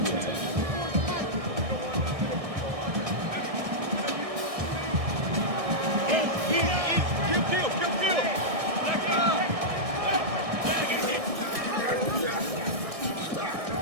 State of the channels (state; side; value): late; left; 1.6 ms